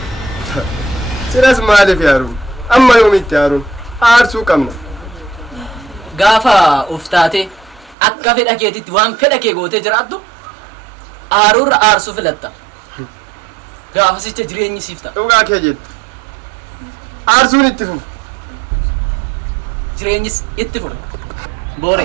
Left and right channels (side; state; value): left; drops out; at 8.0 s